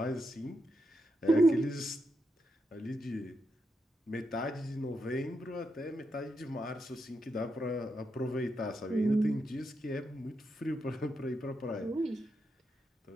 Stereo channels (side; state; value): both; normal; correlation 0.84